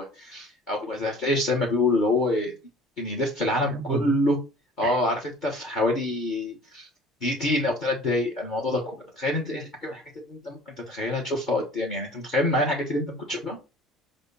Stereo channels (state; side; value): normal; both; correlation 0.47